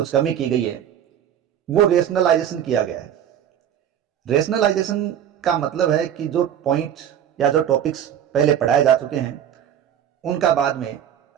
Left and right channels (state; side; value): quieter; left; 9.8 dB